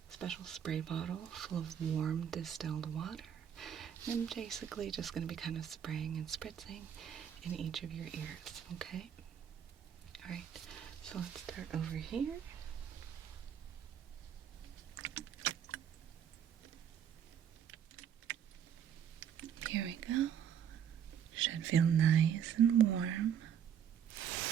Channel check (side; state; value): left; quieter; 8.7 dB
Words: special spray bottle full of warm distilled water. And I'm basically just going to be kind of spraying and spritzing in each of your ears, okay? Alright, so let's start over here. Here we go. Should feel nice and warm.